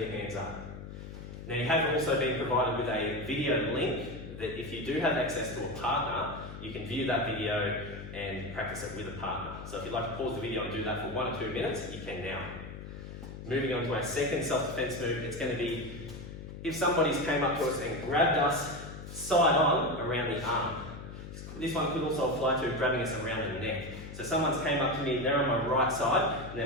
hands up. Now you have also been provided with a video link that if you do have access to a partner, you can view that video and practice it with a partner. So if you'd like to pause the video and do that for 1 or 2 minutes, you can now. Moving on to our second self-defense move, it's going to be if somebody's came up to us and grabbed us side on around the arm. This one could also apply to grabbing us around the neck. So someone's came up to me, they're on my right side, and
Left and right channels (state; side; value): noise; left; hum, 11 dB below the sound